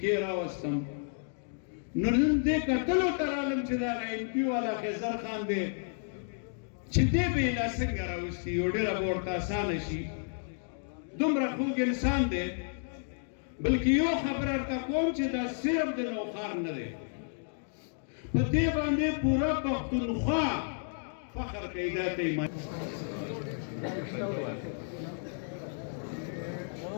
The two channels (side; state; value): right; silent; digital silence